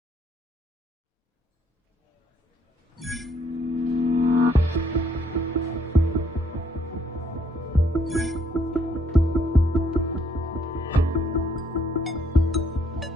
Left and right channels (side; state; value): both; normal; correlation 0.68